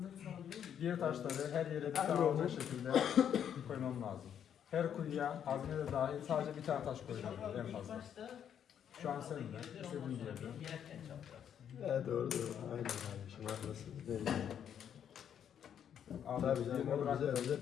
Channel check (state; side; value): quieter; right; 8.9 dB